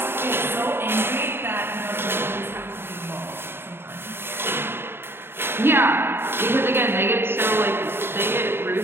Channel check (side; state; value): left; late; 0.11 ms